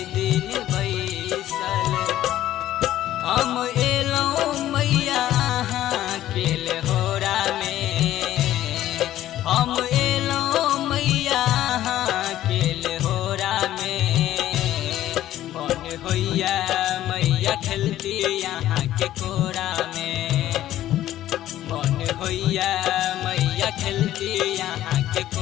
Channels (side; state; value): right; quieter; 13.4 dB